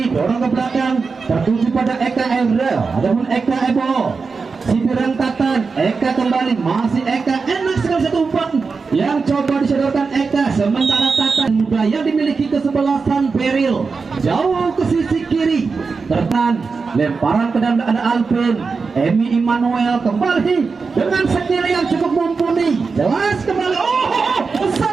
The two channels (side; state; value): left; quieter; 4.7 dB